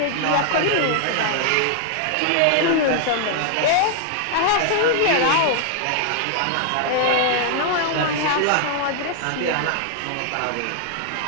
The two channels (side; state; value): both; different; correlation 0.00